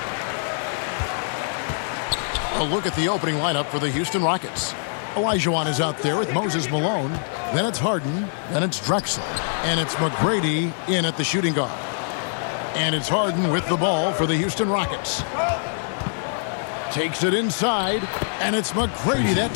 A look at the opening lineup for the Houston Rockets. Olajuwon is out there with Moses Malone. Then it's Harden. Then it's Drexler. And it's McGrady in at the shooting guard. And it's Harden with the ball for the Houston Rockets. Takes it inside. And it's McGrady that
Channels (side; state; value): right; silent; digital silence